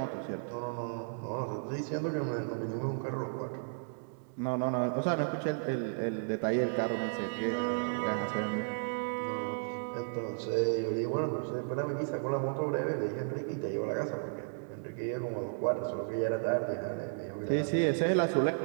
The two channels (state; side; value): silent; left; 55 dB below the other